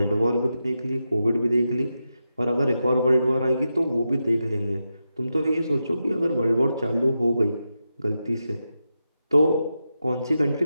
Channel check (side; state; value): both; inverted; correlation -0.88